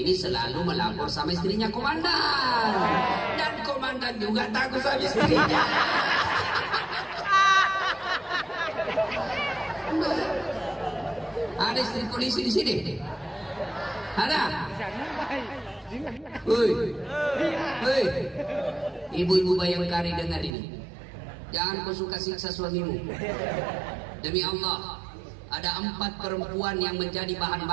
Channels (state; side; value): drops out; left; at 20.6 s